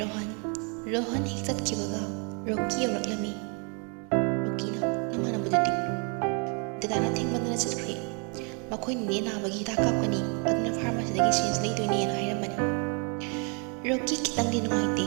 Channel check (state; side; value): quieter; left; 36.8 dB